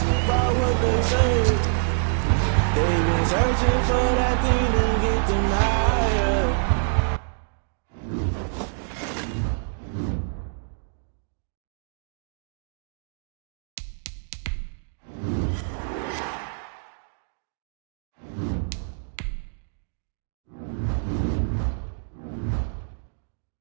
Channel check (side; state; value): left; silent; digital silence